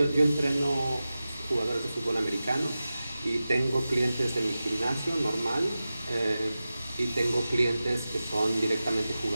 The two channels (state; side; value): inverted; both; correlation -0.94